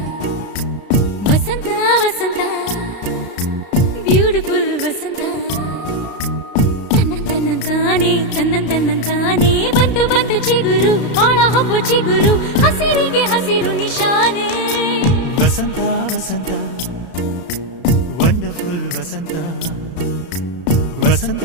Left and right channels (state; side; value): late; right; 33 ms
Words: ವಸಂತ ವಸಂತ ಬ್ಯೂಟಿಫುಲ್ ವಸಂತ ತನ್ನಂತಾನೆ ಬಂತು ಬಂತು ಚಿಗುರು ಒಳ ಹಬ್ಬ ಚಿಗುರು ಹಸಿರಿಗೆ ಹಸಿರು ನಿಶಾನೆ ವಸಂತ ವಸಂತ ವಂಡರ್ಫುಲ್ ವಸಂತ ವಸಂತ